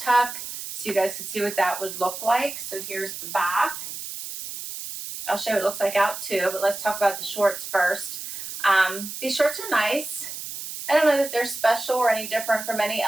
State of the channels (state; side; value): noise; right; hiss, 8 dB below the sound